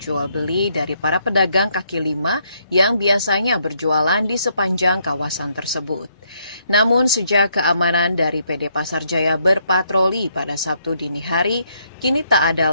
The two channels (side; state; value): both; inverted; correlation -0.73